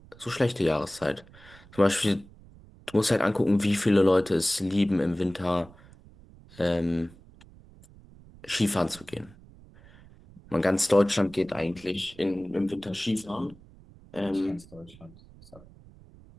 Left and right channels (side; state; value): right; noise; rumble, 23 dB below the sound